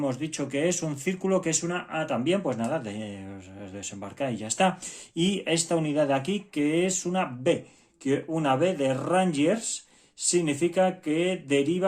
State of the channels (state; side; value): identical; both; correlation 1.00